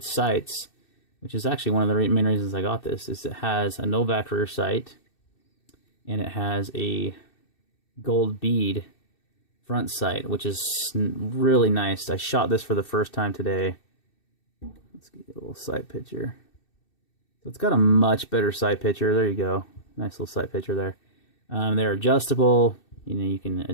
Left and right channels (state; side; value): late; right; 2.6 ms